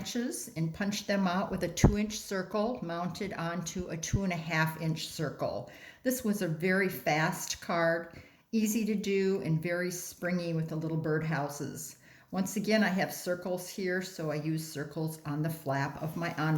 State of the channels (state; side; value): identical; both; correlation 1.00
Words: and punched them out with a 2-inch circle mounted onto a 2.5-inch circle. This was a very fast card, easy to do and very springy with the little birdhouses. Once again, I have circles here, so I use circles on the flap of my